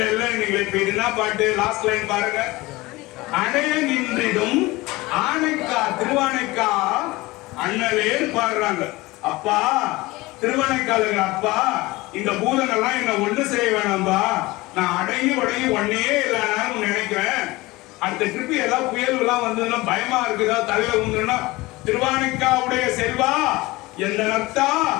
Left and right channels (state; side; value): quieter; right; 20.9 dB